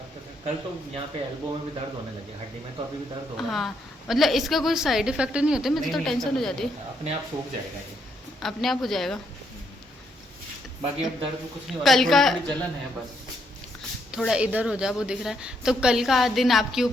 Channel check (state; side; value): normal; both; correlation 0.75